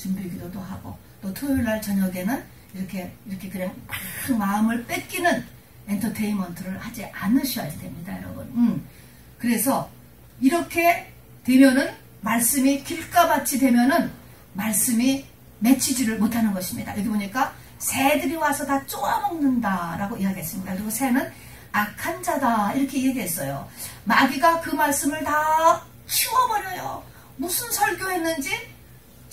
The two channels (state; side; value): identical; both; correlation 1.00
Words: 하고, 또 토요일날 저녁에는 이렇게 그냥 막 마음을 뺏기는 엔터테인먼트를 하지 않으셔야 됩니다, 여러분. 그래서 이렇게 되면은, 말씀이 길가밭이 되면은 말씀이 맺히지를 못하는 것입니다. 여기 보니까 새들이 와서 다 쪼아먹는다라고 이야기했습니다. 그리고 새는 악한 자다 이렇게 얘기했어요. 마귀가 그 말씀을 다 치워버려요. 무슨 설교했는지